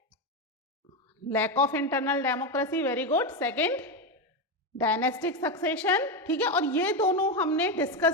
Lack of internal democracy, very good. Second, dynastic succession, ठीक है। और ये दोनों हमने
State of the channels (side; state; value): both; normal; correlation 0.11